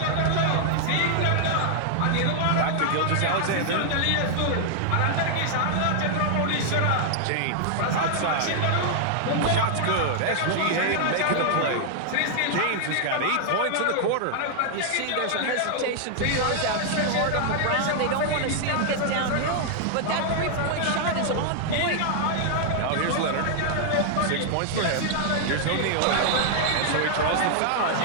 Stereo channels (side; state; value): both; different; correlation -0.01